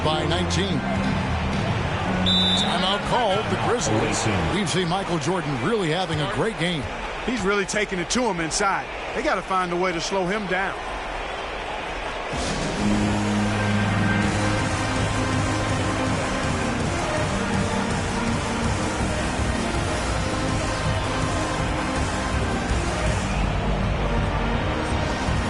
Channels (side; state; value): both; identical; correlation 1.00